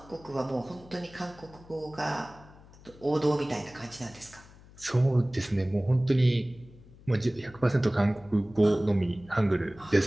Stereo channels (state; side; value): noise; left; hum, 22 dB below the sound